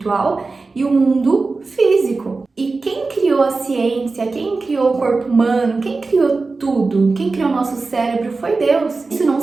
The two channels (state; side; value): quieter; left; 3.9 dB